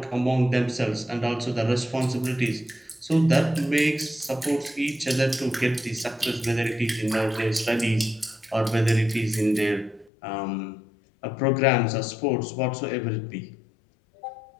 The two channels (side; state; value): right; drops out; at 10.1 s